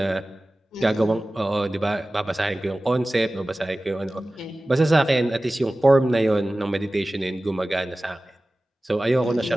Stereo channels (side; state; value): both; normal; correlation 0.97